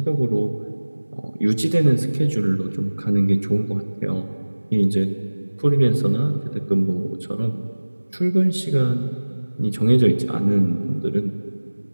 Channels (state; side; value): inverted; both; correlation -1.00